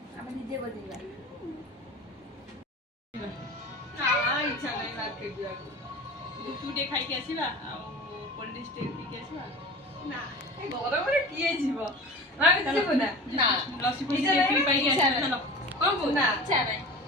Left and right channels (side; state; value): both; normal; correlation 0.35